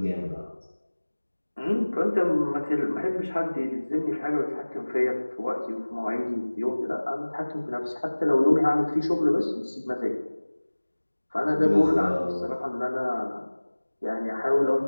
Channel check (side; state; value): both; inverted; correlation -1.00